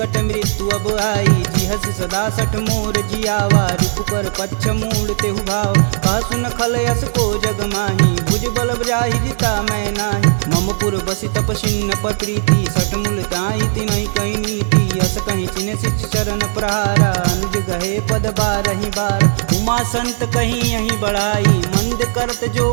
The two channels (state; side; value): silent; left; digital silence